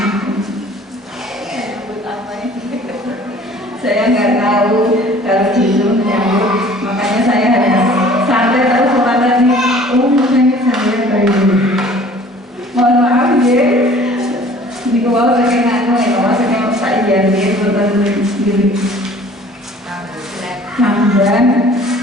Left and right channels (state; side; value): normal; both; correlation 0.50